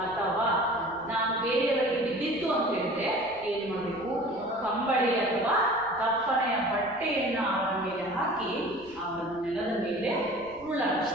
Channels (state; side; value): noise; right; rumble, 25 dB below the sound